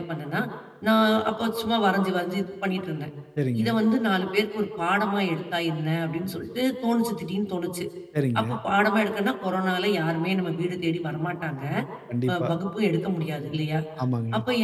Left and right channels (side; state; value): both; identical; correlation 1.00